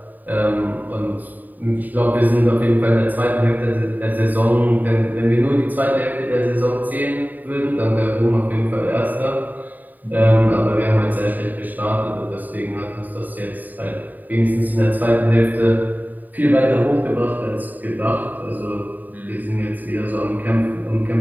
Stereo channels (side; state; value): left; late; 0.086 ms